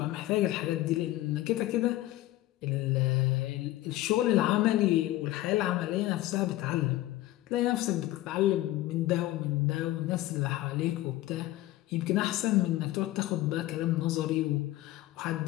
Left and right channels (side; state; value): right; quieter; 16.1 dB